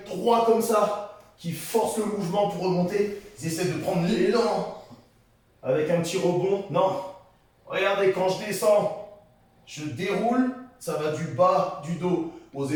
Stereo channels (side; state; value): both; identical; correlation 1.00